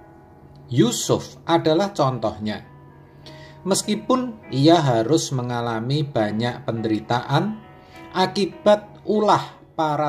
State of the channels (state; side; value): identical; both; correlation 1.00